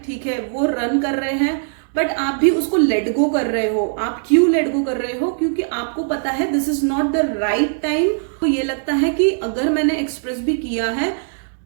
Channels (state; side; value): silent; left; digital silence